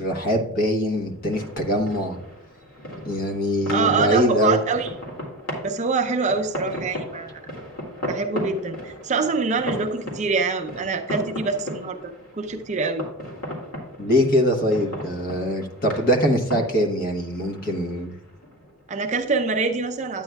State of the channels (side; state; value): both; normal; correlation 0.27